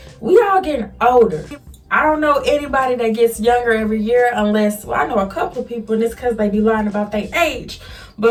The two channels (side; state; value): both; identical; correlation 1.00